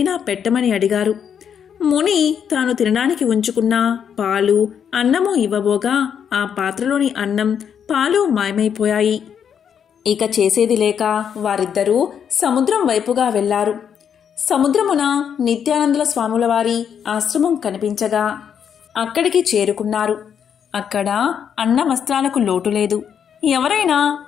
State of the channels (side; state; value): right; quieter; 8.0 dB